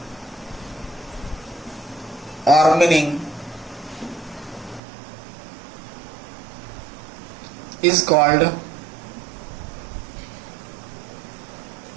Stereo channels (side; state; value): left; drops out; at 4.8 s